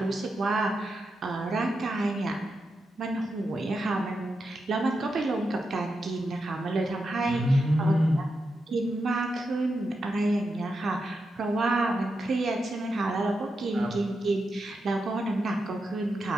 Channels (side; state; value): both; normal; correlation 0.87